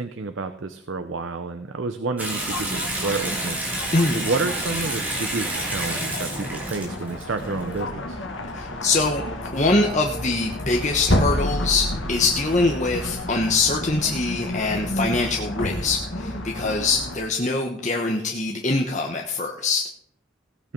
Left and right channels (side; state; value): both; normal; correlation 0.39